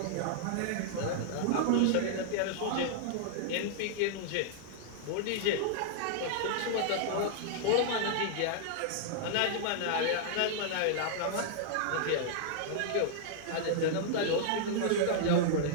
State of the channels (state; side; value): different; both; correlation -0.01